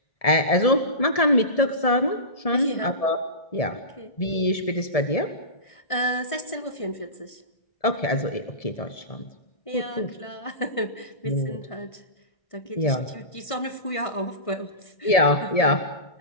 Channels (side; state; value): right; late; 1.7 ms